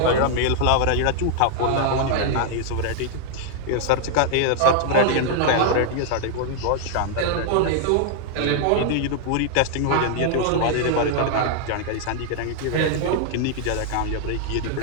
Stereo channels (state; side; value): different; both; correlation 0.00